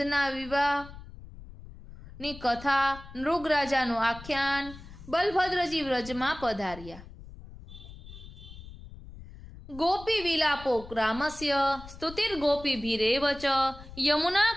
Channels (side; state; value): left; noise; rumble, 16 dB below the sound